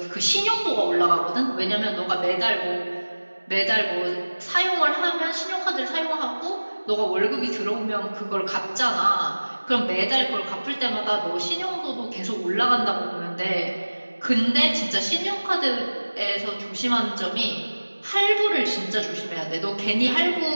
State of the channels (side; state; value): both; inverted; correlation -1.00